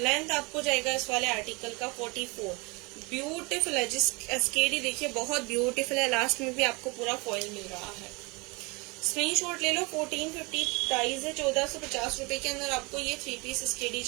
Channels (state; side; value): quieter; left; 27.5 dB